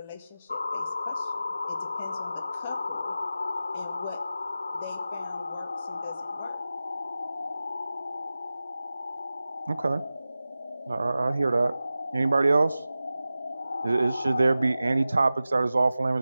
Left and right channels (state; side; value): inverted; both; correlation -0.95